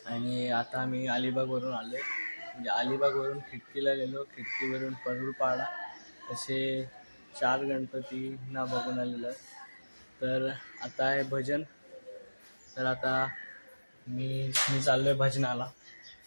आणि आता मी अलिबागवरून आलो. म्हणजे अलिबागवरून खिडकीला गेलो, खिडकीवरून परुळपाडा असे 4 गणपतींना बघून आलेलो आहे. तर आता आहे भजन. तर आता मी चाललोय भजनाला.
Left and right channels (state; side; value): inverted; both; correlation -1.00